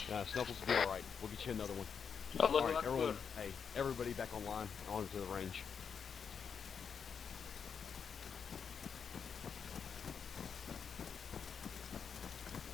Snuffles will be all right. We'll get you another one. Oh, look, all right, look, everyone. look. Hey, everybody back online, onto the range.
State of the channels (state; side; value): quieter; right; 6.7 dB